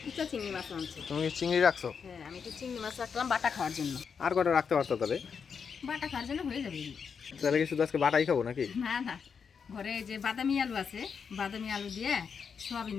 কুচা চিংড়ি মাছ আনছে। তুমি কি চিংড়ি রাখছো? হ্যাঁ, আমি তো চিংড়ি মাছ রাখলাম বাটা খাওয়ার জন্য। আর কটা রাখতে পারতো তবে? বাটা খাওয়ার জন্য হয়ে যাবে। তাহলে কি শুধু আজকে বাটাই খাবো নাকি? না না, ঘরে যে বাদামি আলু আছে, বাদামি আলু দিয়ে সোয়াবিন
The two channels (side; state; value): right; quieter; 6.3 dB